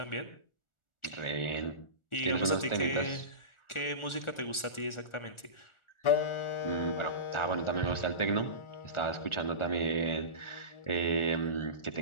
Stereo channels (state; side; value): late; right; 1.4 ms